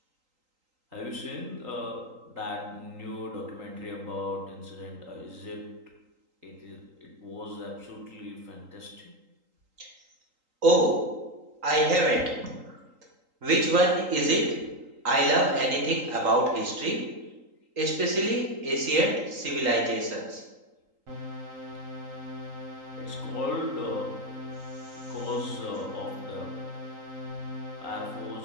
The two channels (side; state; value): left; late; 3.8 ms